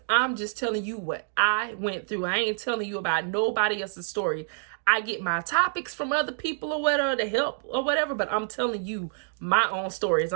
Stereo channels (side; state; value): left; silent; digital silence